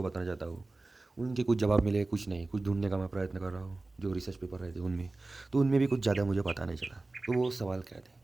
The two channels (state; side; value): quieter; left; 3.1 dB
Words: बताना चाहता हूँ। उनके कुछ जवाब मिले, कुछ नहीं, कुछ ढूंढने का मैं प्रयत्न कर रहा हूँ जो रिसर्च पेपर रहे थे उनमें। तो उनमें भी कुछ ज़्यादा मुझे पता नहीं चला। तो वो सवाल क्या थे